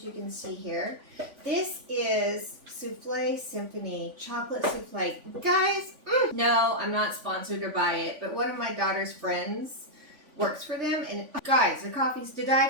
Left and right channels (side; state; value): left; late; 3.5 ms